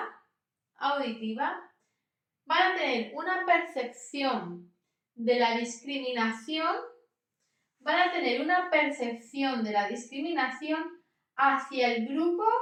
van a tener una percepción de la discriminación, hacia el grupo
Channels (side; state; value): both; identical; correlation 1.00